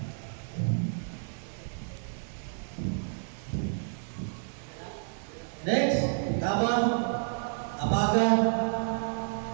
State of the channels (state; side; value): silent; left; 58 dB below the other